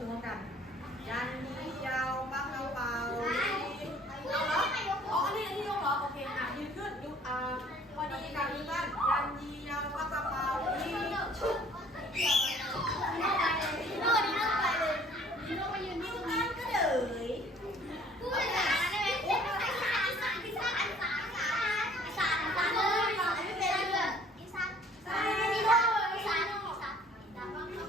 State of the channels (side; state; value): both; normal; correlation 0.55